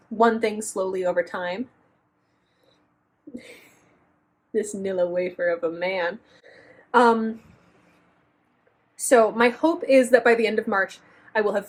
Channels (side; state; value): both; identical; correlation 1.00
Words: one thing slowly over time. This Nilla wafer of a man. So my hope is that by the end of March, I will have